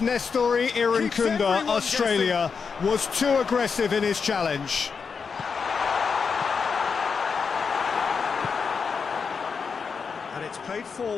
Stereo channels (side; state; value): right; quieter; 5.6 dB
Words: Irankunda, Australia, was too aggressive in his challenge. And it's played